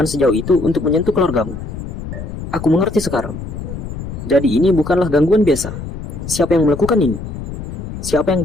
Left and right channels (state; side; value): noise; left; rumble, 8 dB below the sound